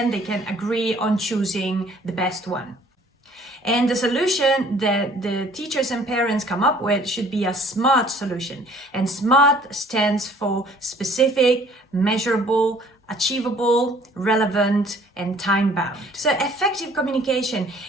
they can agree on choosing the best one. And the solution that the teachers and parents come up with should be a SMART solution. And SMART stands for specific, measurable, achievable, relevant, and time-bound. So effective communication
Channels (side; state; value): both; normal; correlation 0.56